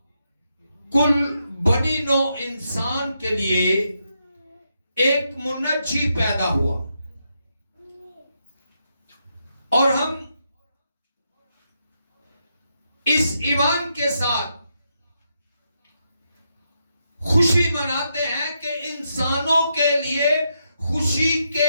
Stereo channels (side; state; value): both; inverted; correlation -0.82